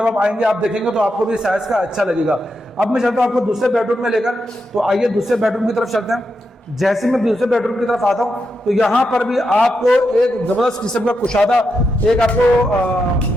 आप आएंगे आप देखेंगे तो आपको भी साइज का अच्छा लगेगा। अब मैं चलता हूँ आपको दूसरे बेडरूम में लेकर, तो आइए दूसरे बेडरूम की तरफ चलते हैं। जैसे मैं दूसरे बेडरूम की तरफ आता हूँ तो यहाँ पर भी आपको एक जबरदस्त किस्म का कुशादा एक आपको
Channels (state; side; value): normal; both; correlation 0.85